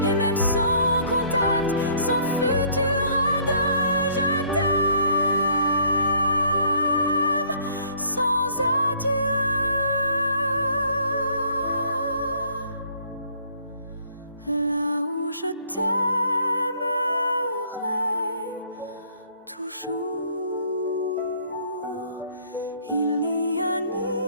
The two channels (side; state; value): both; inverted; correlation -0.60